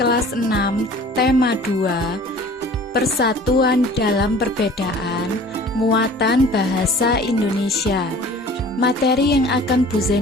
6 tema 2 Persatuan dalam Perbedaan, Muatan Bahasa Indonesia. Materi yang akan Bu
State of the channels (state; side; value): normal; both; correlation 0.47